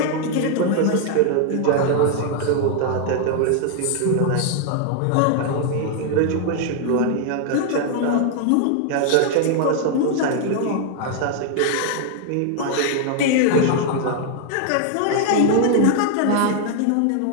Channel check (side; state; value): both; different; correlation 0.00